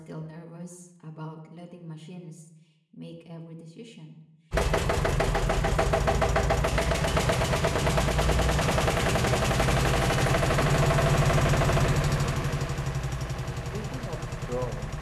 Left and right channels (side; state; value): both; identical; correlation 1.00